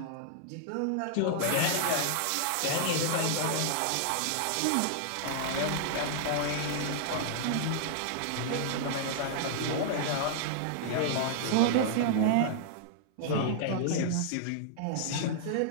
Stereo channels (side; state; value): both; different; correlation -0.01